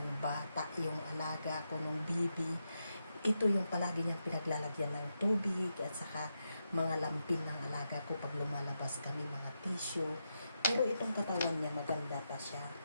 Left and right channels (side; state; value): both; inverted; correlation -0.85